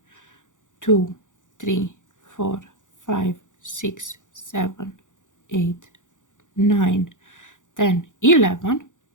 2, 3, 4, 5, 6, 7, 8, 9, 10, 11.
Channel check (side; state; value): right; late; 0.87 ms